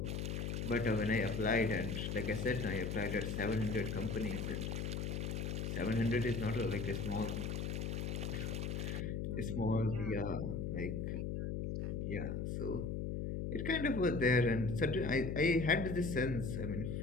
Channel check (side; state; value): left; noise; hum, 2 dB below the sound